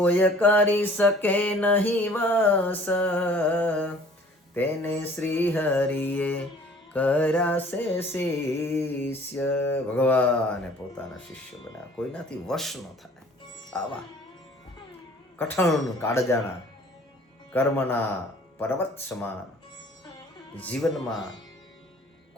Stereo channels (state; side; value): normal; both; correlation 0.52